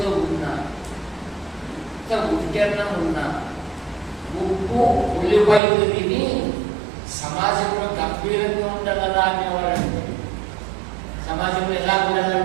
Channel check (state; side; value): drops out; left; at 5.6 s